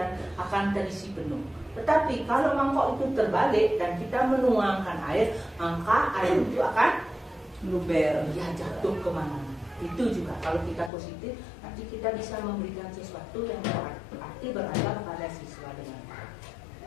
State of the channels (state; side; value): drops out; right; at 10.9 s